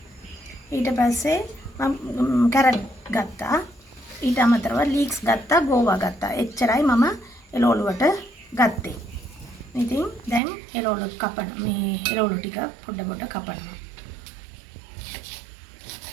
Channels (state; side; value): drops out; left; at 10.4 s